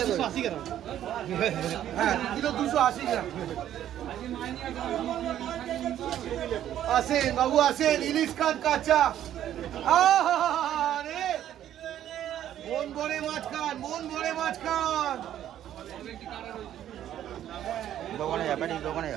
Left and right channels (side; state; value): left; quieter; 11.4 dB